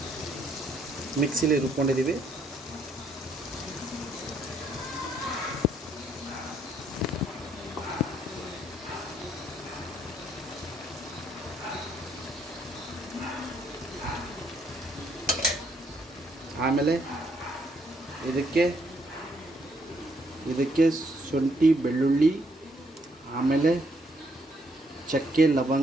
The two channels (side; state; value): both; normal; correlation 0.71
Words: ಮಿಕ್ಸಿಲಿ ರುಬ್ಕೊಂಡಿದ್ದೀವಿ. ಆಮೇಲೆ ಇದಕ್ಕೆ ಶುಂಠಿ, ಬೆಳ್ಳುಳ್ಳಿ, ಆಮೇಲೆ ಚಕ್ಕೆ,